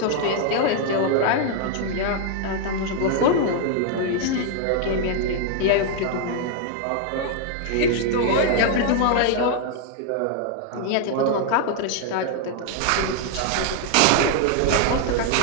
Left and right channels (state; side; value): different; both; correlation 0.00